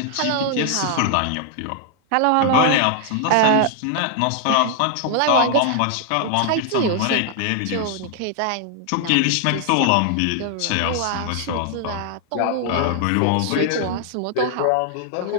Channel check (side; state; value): both; different; correlation 0.00